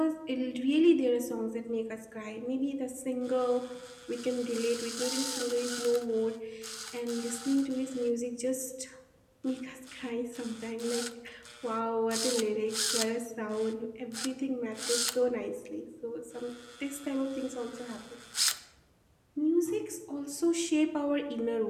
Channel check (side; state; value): both; identical; correlation 1.00